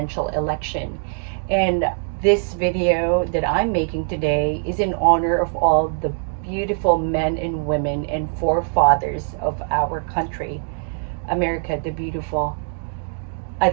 election. And this video that I'm making today is in honor of all the beautiful men and women and forefathers of our country, America the Beautiful.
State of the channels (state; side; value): silent; left; 64 dB below the other